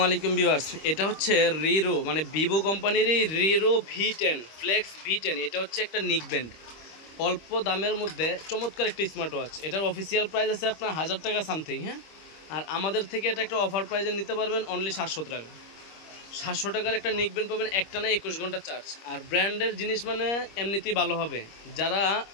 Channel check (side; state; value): right; late; 25 ms